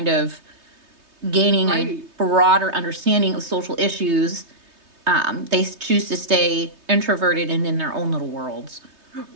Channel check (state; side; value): late; left; 3.2 ms